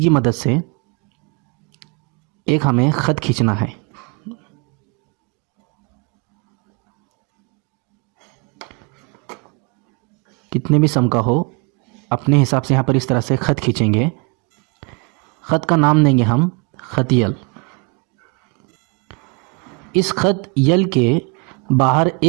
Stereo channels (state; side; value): quieter; left; 31.8 dB